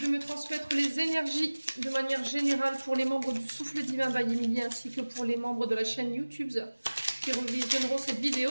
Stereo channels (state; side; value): inverted; both; correlation -1.00